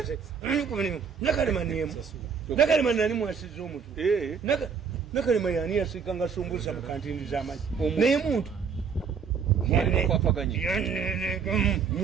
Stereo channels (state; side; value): quieter; left; 6.3 dB